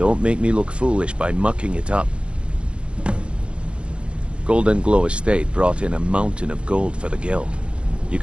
make me look foolish by mucking it up. Golden Glow Estate brought in a mountain of gold for the guild. You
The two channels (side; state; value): left; late; 0.058 ms